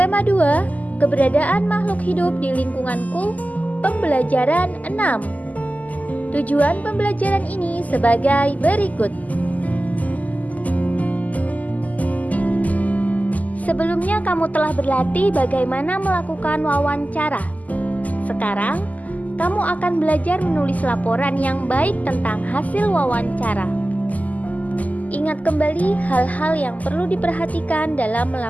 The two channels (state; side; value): late; right; 0.077 ms